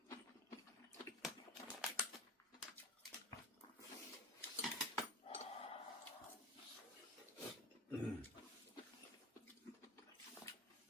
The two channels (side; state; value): both; normal; correlation 0.27